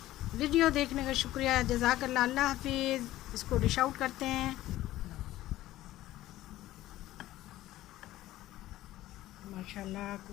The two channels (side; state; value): right; quieter; 15.3 dB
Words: वीडियो देखने का शुक्रिया, जज़ाकल्लाह, अल्लाह हाफिज़। इसको डिश आउट करते हैं। माशाल्लाह,